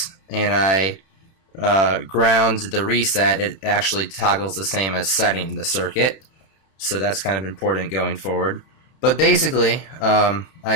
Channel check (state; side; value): late; right; 31 ms